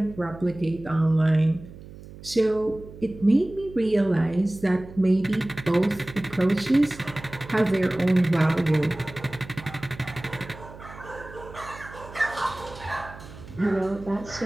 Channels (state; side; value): noise; right; hum, 16 dB below the sound